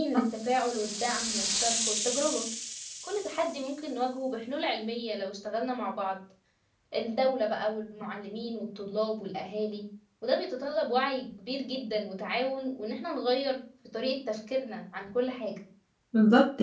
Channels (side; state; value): both; identical; correlation 1.00